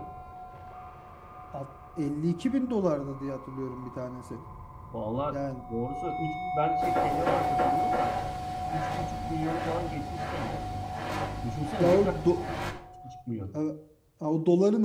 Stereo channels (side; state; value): both; identical; correlation 1.00